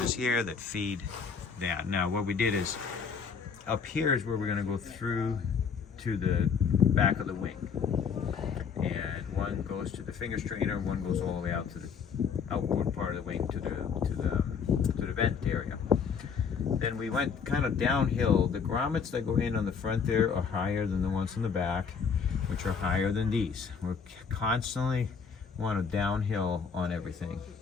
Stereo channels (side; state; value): right; quieter; 6.2 dB